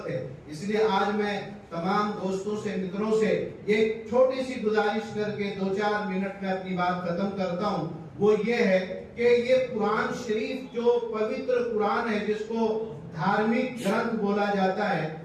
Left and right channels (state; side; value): identical; both; correlation 1.00